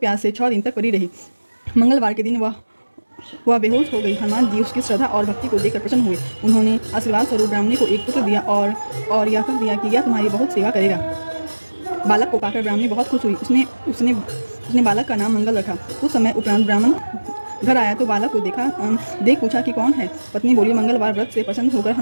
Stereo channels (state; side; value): inverted; both; correlation -1.00